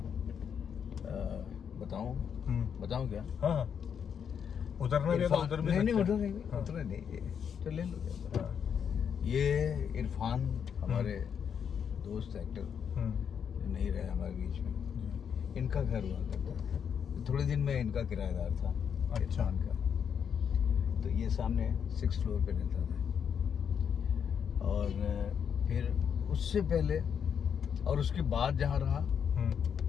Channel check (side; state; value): right; quieter; 7.6 dB